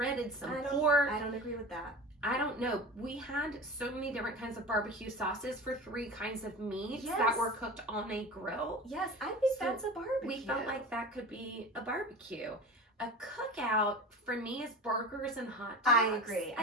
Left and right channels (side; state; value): both; normal; correlation 0.32